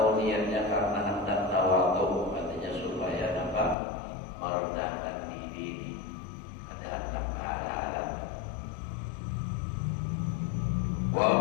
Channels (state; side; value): drops out; right; at 3.8 s